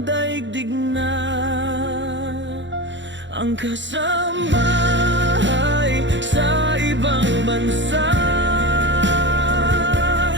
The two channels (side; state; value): left; late; 0.54 ms